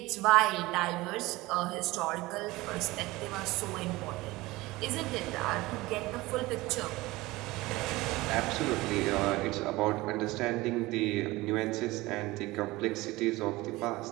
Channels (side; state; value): left; quieter; 20.1 dB